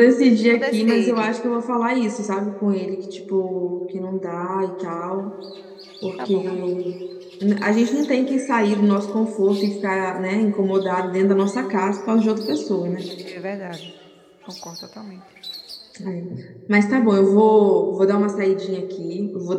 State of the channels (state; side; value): identical; both; correlation 1.00